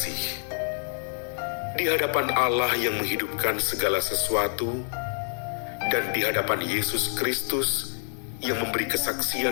di hadapan Allah yang menghidupkan segala sesuatu dan di hadapan Yesus Kristus yang memberi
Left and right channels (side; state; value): right; silent; 60 dB below the other